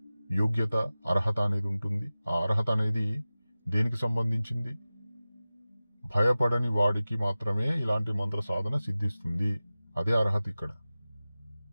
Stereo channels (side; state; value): both; inverted; correlation -0.96